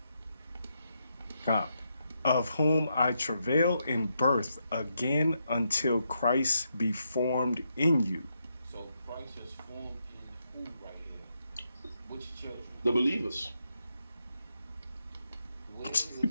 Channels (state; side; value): inverted; both; correlation -0.81